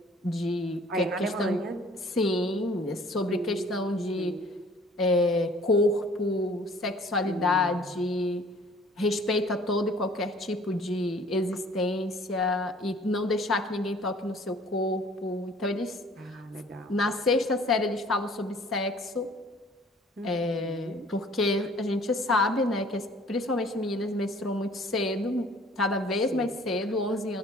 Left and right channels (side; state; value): both; normal; correlation 0.53